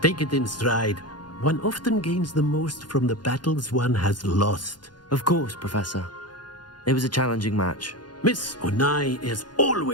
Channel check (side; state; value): right; late; 0.70 ms